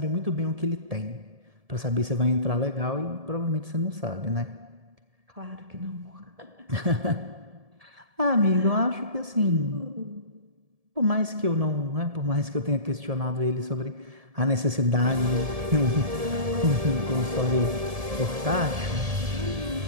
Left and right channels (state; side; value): late; left; 1.7 ms